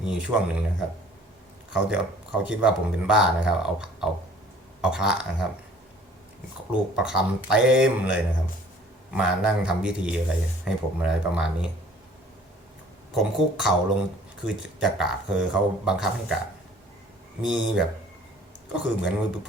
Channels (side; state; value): both; normal; correlation 0.53